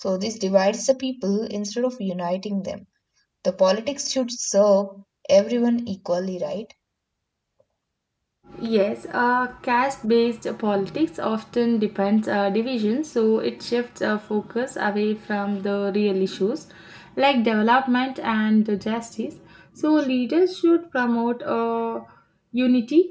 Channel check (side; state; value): both; identical; correlation 1.00